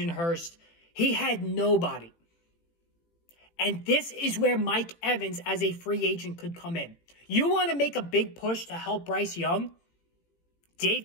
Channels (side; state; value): right; late; 18 ms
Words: Hurst. He had nobody. And this is where Mike Evans as a free agent could come in. You want to make a big push to help Bryce Young? Dave